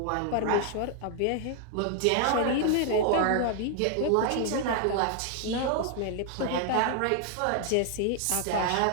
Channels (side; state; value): both; different; correlation 0.00